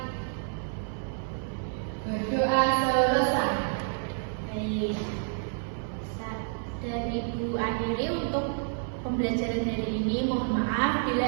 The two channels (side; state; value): left; silent; 55 dB below the other